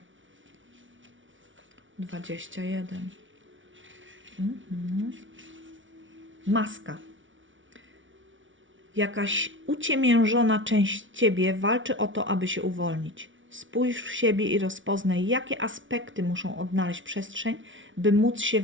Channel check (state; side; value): late; left; 0.56 ms